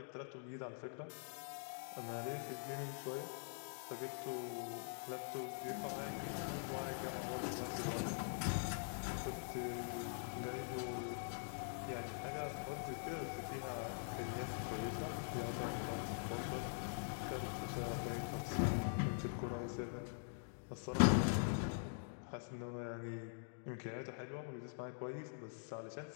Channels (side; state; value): right; silent; digital silence